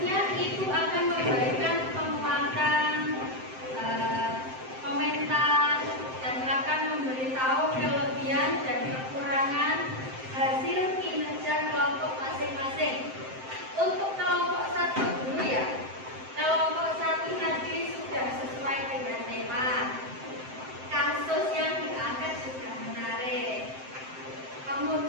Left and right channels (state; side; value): late; left; 7.7 ms